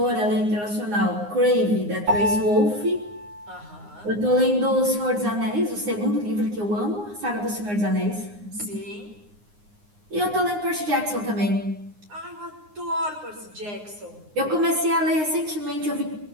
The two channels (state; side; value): late; left; 9.7 ms